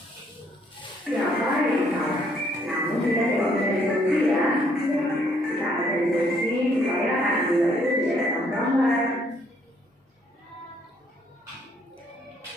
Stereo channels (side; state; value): both; normal; correlation 0.67